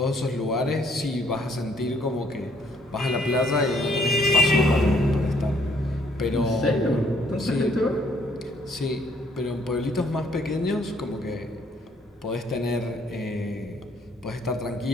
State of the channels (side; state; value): both; normal; correlation 0.65